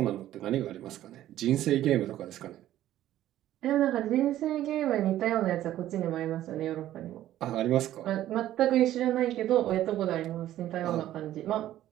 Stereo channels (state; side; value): quieter; left; 13.2 dB